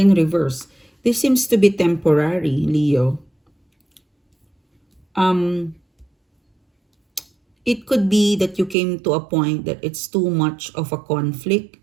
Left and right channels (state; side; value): drops out; left; at 8.8 s